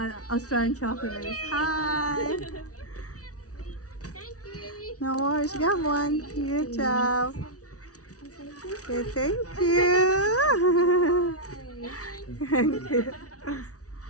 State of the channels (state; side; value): late; right; 0.67 ms